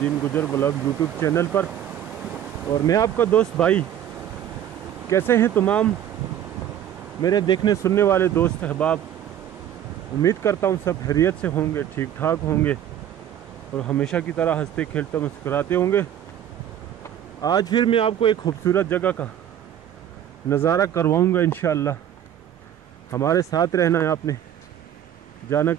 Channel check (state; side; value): quieter; left; 10.4 dB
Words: गुजर ब्लॉग यूट्यूब चैनल पर। और मैं आपका दोस्त भाई, कैसे हैं तमाम मेरे देखने सुनने वाले दोस्त अहबाब। उम्मीद करता हूँ सब खैरियत से होंगे, ठीक ठाक होंगे और हमेशा की तरह हंसते खेलते मुस्कुराते होंगे। आज फिर मैं आपको एक खूबसूरत जगह का नज़ारा करवाऊँगा इंशाअल्लाह। हमारे साथ रहना है, आपने जाना